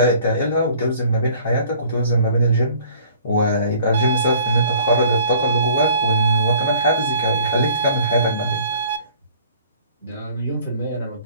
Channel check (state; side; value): inverted; both; correlation -0.53